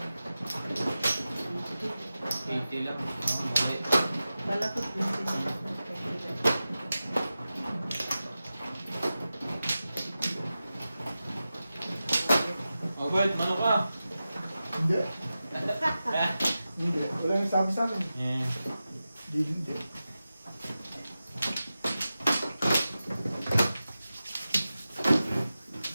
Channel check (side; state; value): both; inverted; correlation -0.94